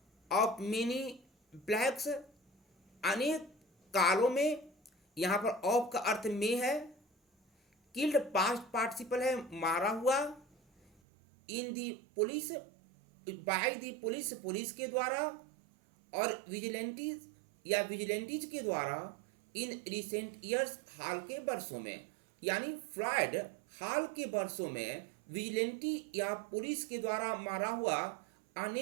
ऑफ मेनी ब्लैक्स। अनेक कालों में, यहाँ पर ऑफ का अर्थ में है, किल्ड पास्ट पार्टिसिपल है, मारा हुआ, in the police, by the police, police के द्वारा, और विजिलेंटीज या विजिलेंटीज के द्वारा इन रिसेंट ईयर्स, हाल के वर्षों में। यानी फ्लॉयड हाल के वर्षों में विजिलेंटी या पुलिस के द्वारा मारा हुआ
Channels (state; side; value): drops out; left; at 11.0 s